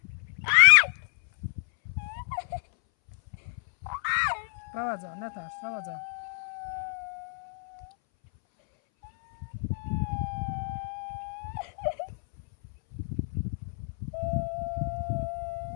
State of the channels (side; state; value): right; silent; 58 dB below the other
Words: روزا نترس روزا